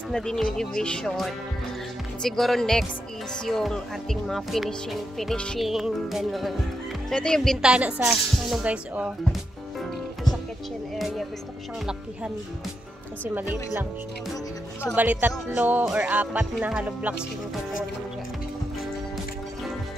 na din yung division. Siguro next is yung ating mga finishing, ganun. So ito yung bintana sa, ano guys, oh. Ito sa kitchen area. Gusto ko siyang lakihan. Kasi maliit lang siya. So bali 3 or 4 na hollow blocks yung kukunin dyan.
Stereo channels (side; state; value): both; normal; correlation 0.84